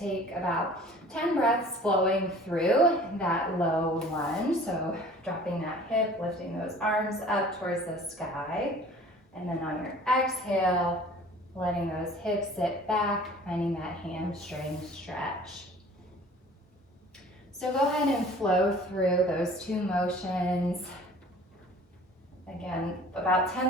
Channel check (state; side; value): normal; both; correlation 0.47